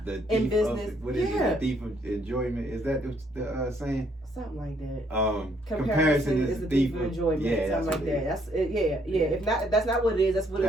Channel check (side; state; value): both; normal; correlation 0.69